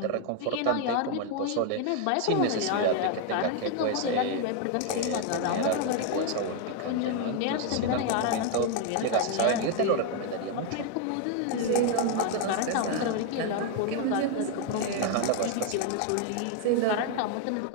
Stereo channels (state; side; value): different; both; correlation 0.01